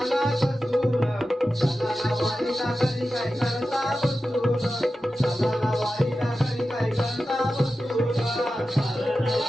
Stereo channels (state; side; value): normal; both; correlation 0.93